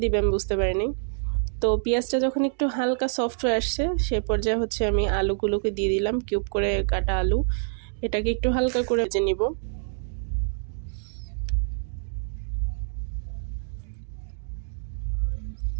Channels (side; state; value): left; silent; digital silence